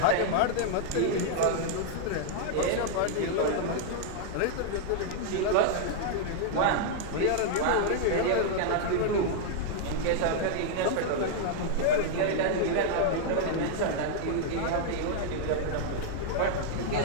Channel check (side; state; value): both; different; correlation -0.01